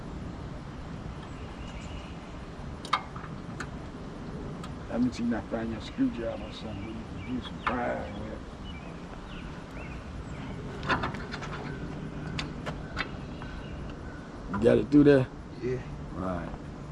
That means you not find your screwdriver or something. You can do some prying with. You got it through there? Yeah. Right.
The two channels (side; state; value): both; identical; correlation 1.00